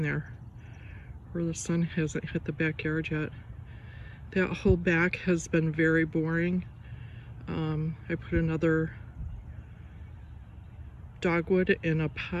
there, where the sun hasn't hit the backyard yet. That whole back has been very boring. I put another dogwood in a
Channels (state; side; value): identical; both; correlation 1.00